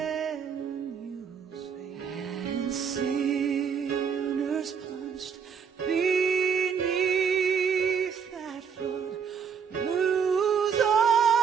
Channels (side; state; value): left; quieter; 6.9 dB